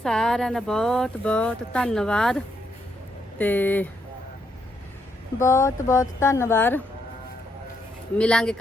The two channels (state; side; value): normal; both; correlation 0.77